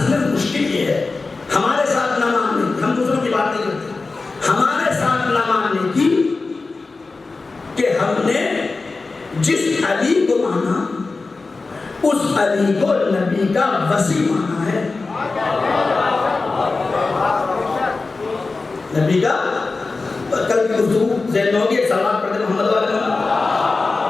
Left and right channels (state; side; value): quieter; right; 3.8 dB